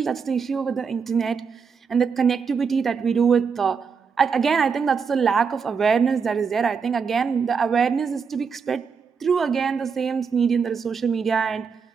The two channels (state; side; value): quieter; left; 5.9 dB